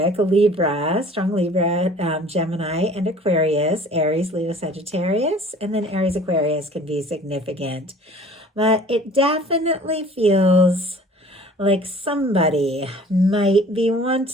Libra, strong Libra, Gemini, and Aquarius, Aries, Leo, Sagittarius, and then Aries, Aquarius can be significant. But it definitely feels like somebody might be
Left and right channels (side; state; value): both; normal; correlation 0.49